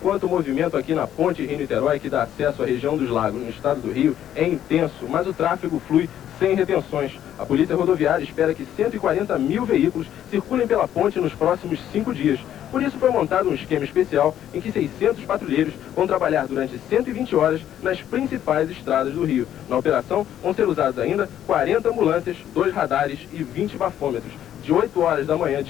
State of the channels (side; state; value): right; quieter; 11.0 dB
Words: o movimento aqui na ponte Rio-Niterói, que dá acesso à região dos lagos no estado do Rio, é intenso, mas o tráfego flui sem retenções. A Polícia Rodoviária espera que 140 mil veículos circulem pela ponte nos próximos 5 dias. Por isso foi montado um esquema especial em que 600 patrulheiros vão trabalhar durante 120 horas nas principais estradas do Rio. Na operação vão ser usados ainda 40 ambulâncias, 2 radares e 20 bafômetros. De 8 horas da manhã